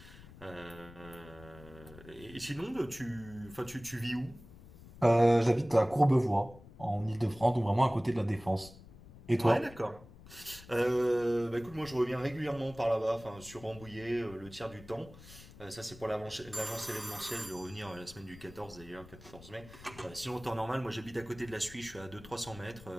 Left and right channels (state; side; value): noise; left; rumble, 19 dB below the sound